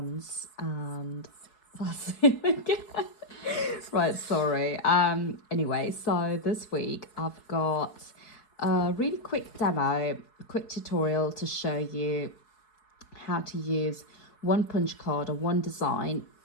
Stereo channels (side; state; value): right; late; 4.7 ms